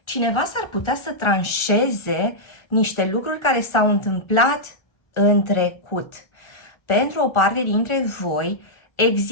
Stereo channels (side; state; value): right; late; 1.3 ms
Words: Cineva s-ar putea să tranșeze niște lucruri care s-au întâmplat în trecut. Pentru o parte dintre voi